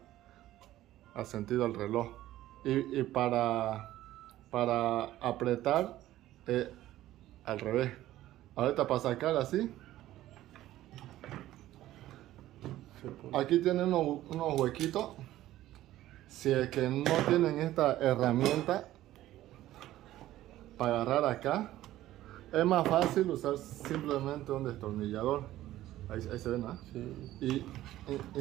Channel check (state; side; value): quieter; left; 14.5 dB